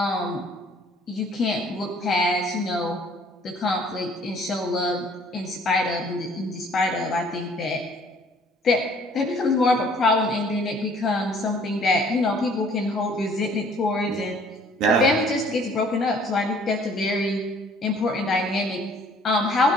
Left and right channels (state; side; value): normal; both; correlation 0.57